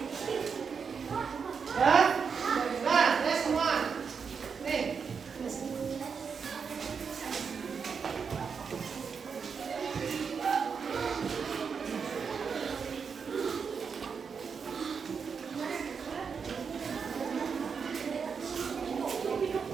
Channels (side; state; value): left; quieter; 6.0 dB